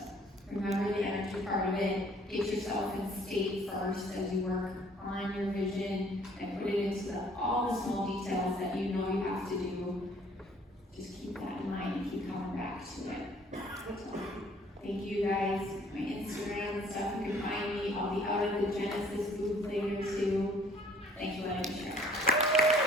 remember the energy part of it. Get yourself in state first as you work on your vision and put it into all the small details that you know you have to do. Just keep that in mind and keep coming back to it. So, thank you guys. My Instagram and stuff, you can find me. I'll be out at the Genesis booth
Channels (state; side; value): normal; both; correlation 0.58